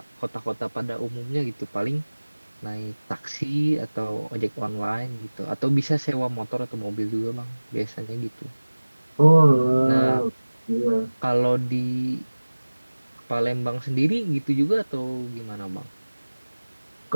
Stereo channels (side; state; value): both; inverted; correlation -1.00